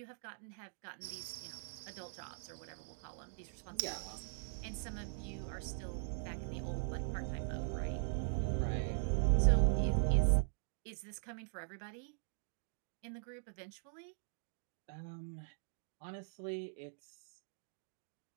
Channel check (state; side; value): silent; left; digital silence